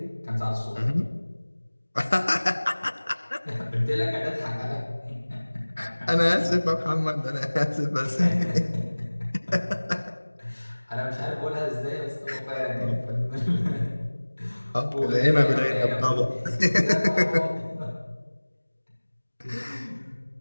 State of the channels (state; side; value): inverted; both; correlation -1.00